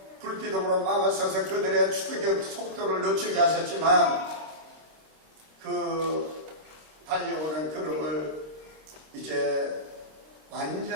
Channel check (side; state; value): left; late; 25 ms